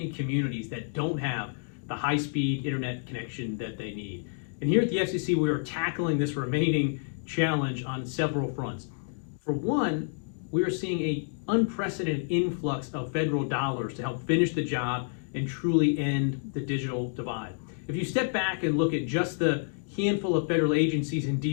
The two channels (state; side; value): silent; right; digital silence